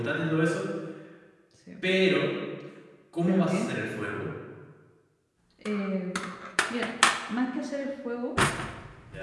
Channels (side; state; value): both; identical; correlation 1.00